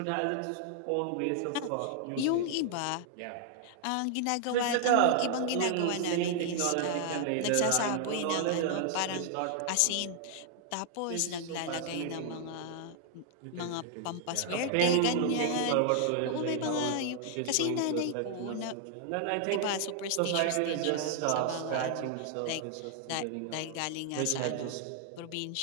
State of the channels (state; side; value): different; both; correlation 0.00